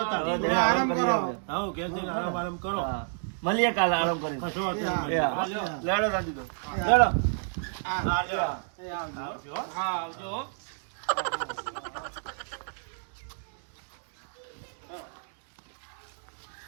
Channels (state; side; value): silent; left; digital silence